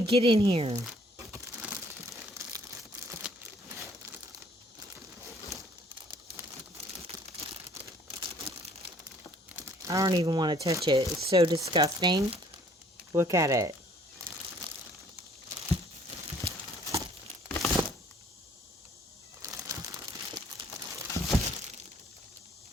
get in here? I don't even want to touch it. It's so disgusting. Look at it.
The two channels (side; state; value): both; normal; correlation 0.59